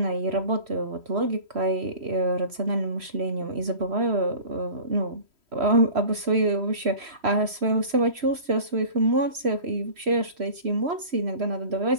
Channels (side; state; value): left; late; 3.1 ms